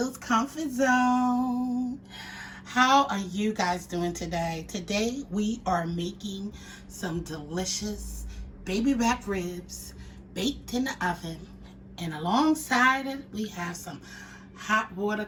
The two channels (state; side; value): identical; both; correlation 1.00